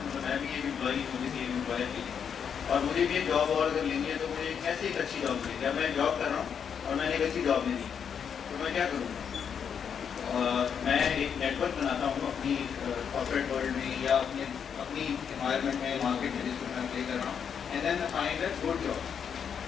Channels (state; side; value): quieter; right; 7.4 dB